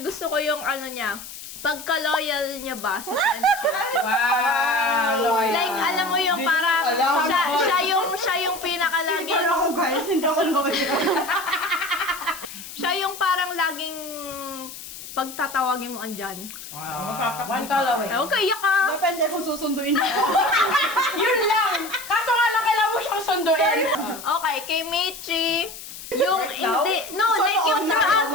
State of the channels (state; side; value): noise; left; hiss, 13 dB below the sound